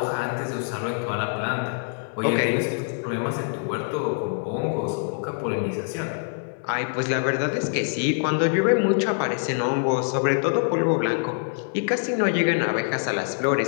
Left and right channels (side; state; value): right; silent; digital silence